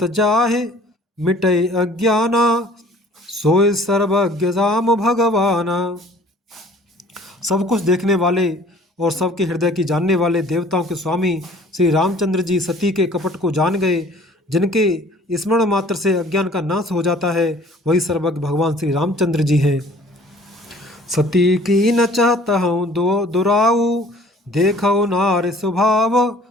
जाहे मिटे अज्ञाना, सोय सर्वज्ञ राम भगवाना। सब कुछ देखने वाले और सबके हृदय की जानने वाले देवताओं के स्वामी श्री रामचंद्र जी सती के कपट को जान गए। जिनके स्मरण मात्र से अज्ञान का नाश हो जाता है, वही सर्वज्ञ भगवान श्री रामचंद्र जी हैं। सती की न चाहता हूँ दुराऊ, देखो नार स्वभाव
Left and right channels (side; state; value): both; normal; correlation 0.52